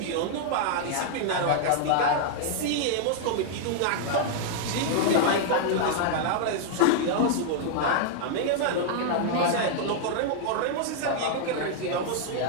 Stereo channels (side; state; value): both; different; correlation -0.01